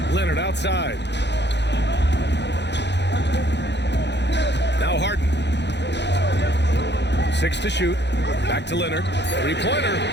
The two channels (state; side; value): late; right; 0.50 ms